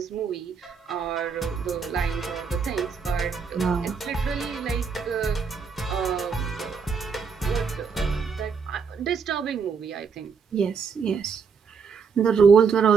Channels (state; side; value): quieter; left; 5.8 dB